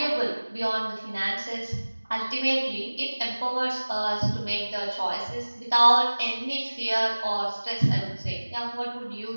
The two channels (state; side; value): inverted; both; correlation -1.00